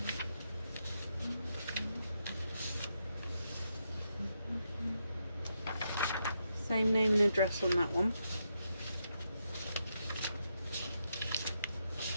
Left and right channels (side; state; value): both; inverted; correlation -0.82